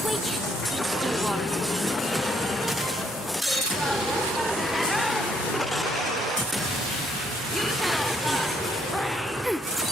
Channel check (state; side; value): normal; both; correlation 0.69